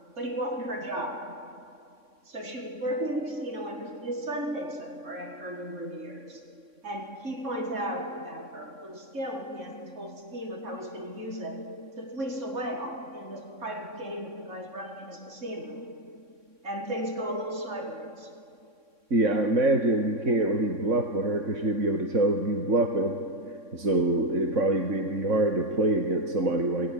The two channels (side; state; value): left; late; 3.6 ms